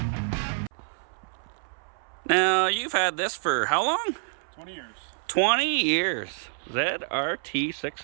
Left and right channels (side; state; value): left; silent; 58 dB below the other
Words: Now, you've had this for how long? 20 years. 20 years. ZRT